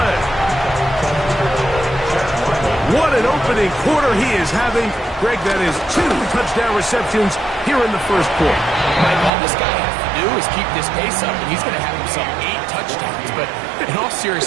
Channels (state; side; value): drops out; left; at 9.3 s